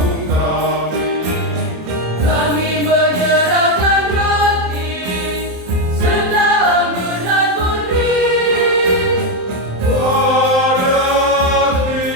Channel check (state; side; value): late; left; 27 ms